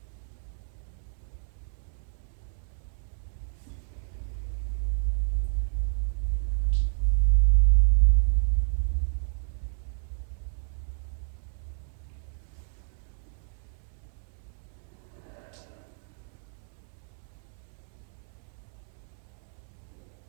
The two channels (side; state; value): left; silent; digital silence